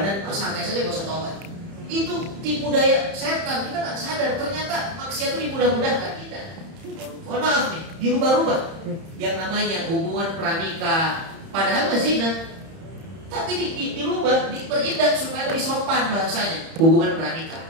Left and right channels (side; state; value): left; late; 31 ms